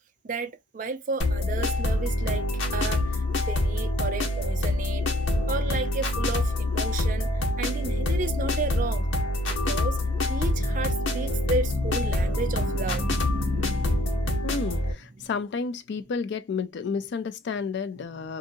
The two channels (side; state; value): both; normal; correlation 0.61